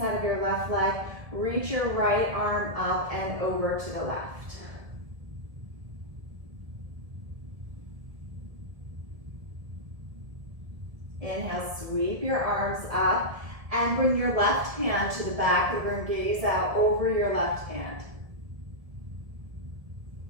of your left leg. Reach your right arm up and over to the left. Inhale, sweep your arms up and bring your left hand to the back of your gaze out over your left hand.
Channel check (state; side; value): late; left; 1.9 ms